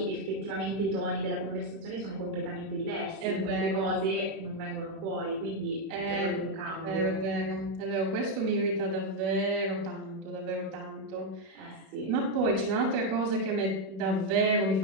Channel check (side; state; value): left; late; 31 ms